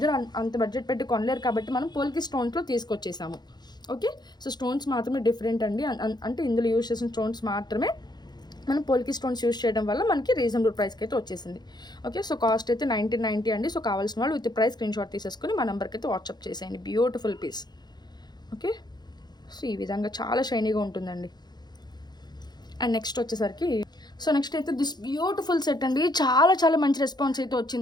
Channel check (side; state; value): right; late; 0.20 ms